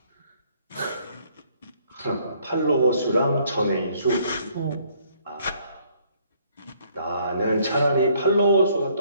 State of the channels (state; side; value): inverted; both; correlation -0.64